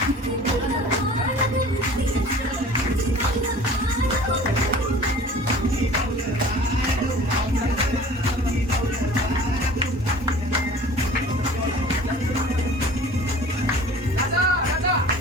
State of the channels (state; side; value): normal; both; correlation 0.45